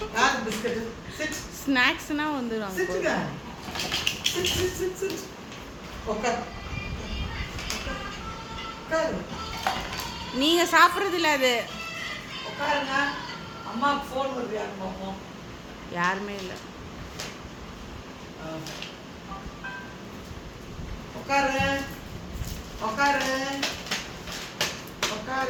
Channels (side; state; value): both; identical; correlation 1.00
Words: யார் பிஸ்கட்? சிட். ஸ்நாக்ஸ்னா வந்துரும். சிட்டுங்க. Sit sit sit sit. உட்கார். உட்கார். நீங்க சாப்பிடுறது இல்ல அது. உட்காருங்க. அம்மாக்கு ஃபோன் வருது யாரு பாப்போம். யாருமே இல்ல. உட்காரு. உட்காரு.